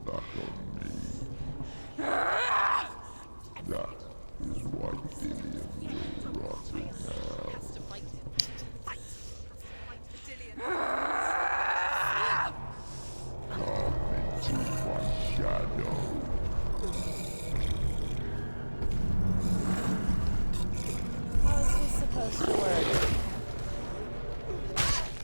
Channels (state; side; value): inverted; both; correlation -1.00